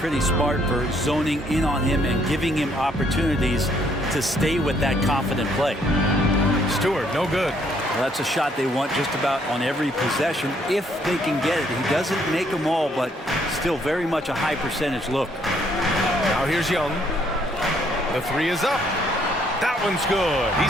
smart for zoning in on him and giving him opportunities to stay with that confident play. Stewart, no good. Well, that's a shot they want just about on every possession if they can get it. He doesn't make them all, but still very much a high percentage look. Now here's Young. The 3 is up. That one's good.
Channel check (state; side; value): normal; both; correlation 0.68